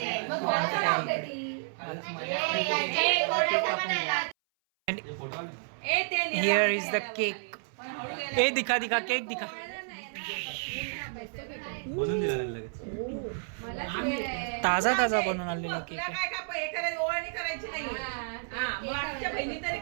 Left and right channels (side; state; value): left; silent; 57 dB below the other